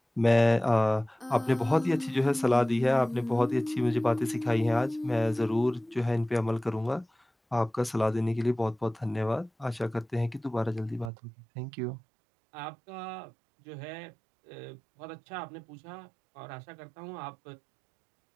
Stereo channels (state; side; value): drops out; left; at 11.1 s